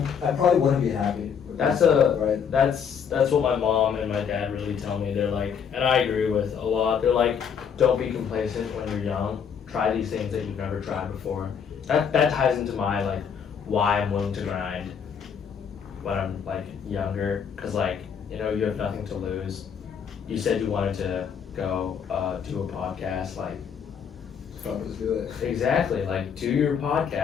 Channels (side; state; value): right; quieter; 7.2 dB